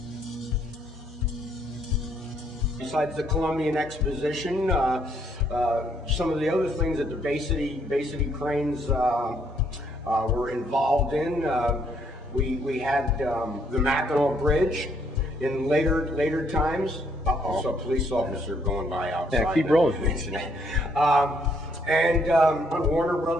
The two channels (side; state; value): both; normal; correlation 0.69